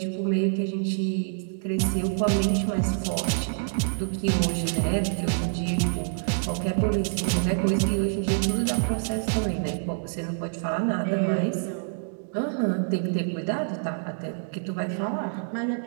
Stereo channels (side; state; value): left; silent; 60 dB below the other